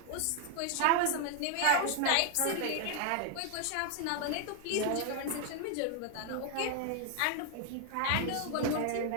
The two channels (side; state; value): both; different; correlation 0.00